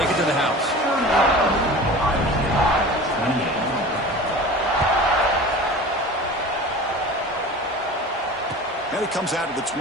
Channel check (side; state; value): both; normal; correlation 0.37